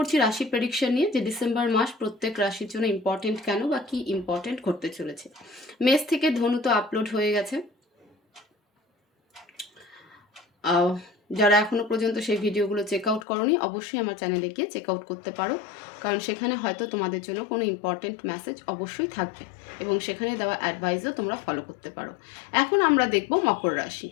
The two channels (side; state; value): right; drops out; at 13.2 s